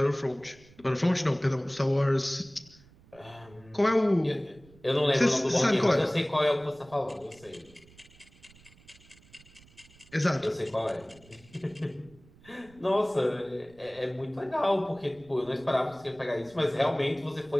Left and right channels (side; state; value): right; noise; rumble, 26 dB below the sound